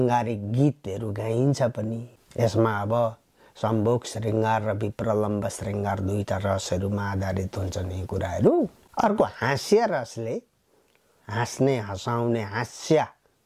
गीतहरू गाइन्छ पनि। यसमा अब सम्भोग श्रृङ्गार र विप्रलम्ब श्रृङ्गार 2टा रसहरूमा आधारित हुन्छन् यी कुराहरू। अर्को हास्य रसले हाँस्ने हँसाउने हास्य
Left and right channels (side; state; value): both; identical; correlation 1.00